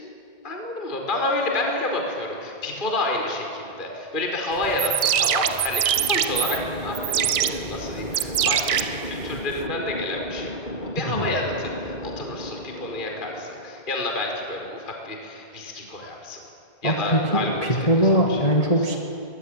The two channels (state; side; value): late; right; 1.6 ms